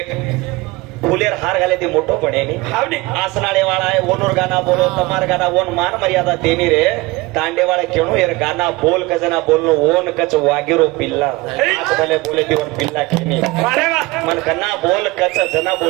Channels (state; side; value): quieter; left; 22.2 dB